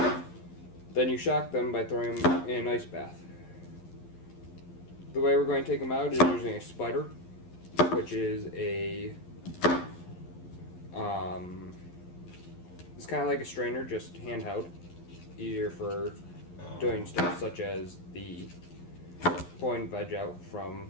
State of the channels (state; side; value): late; right; 11 ms